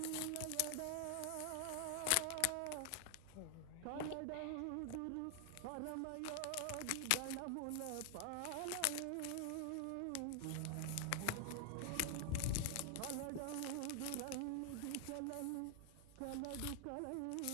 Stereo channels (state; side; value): different; both; correlation 0.00